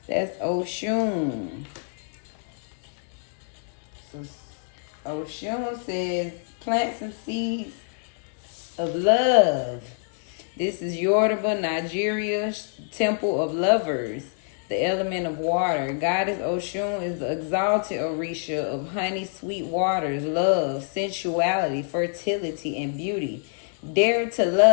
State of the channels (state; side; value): silent; right; 60 dB below the other